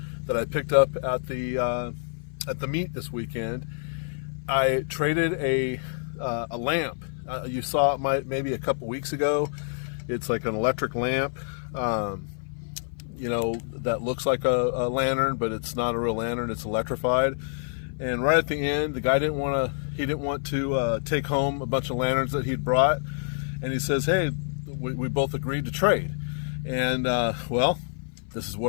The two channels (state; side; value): silent; right; 56 dB below the other